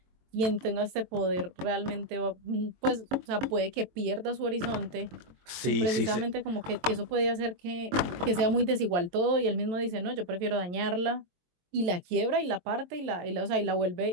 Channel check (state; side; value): late; left; 22 ms